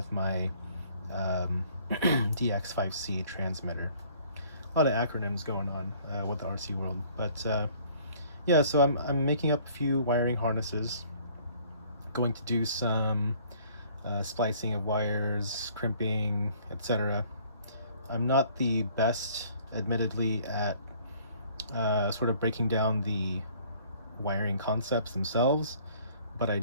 my DX5C transmitter. A lot of acronyms going on with the RC world, but yeah, so I'm making up a few wiring harnesses, going to do some splicing of wires, crimping, etc. I'm not the best, admittedly, at sort of breaking down the wiring concepts themselves, but I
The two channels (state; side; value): inverted; both; correlation -0.57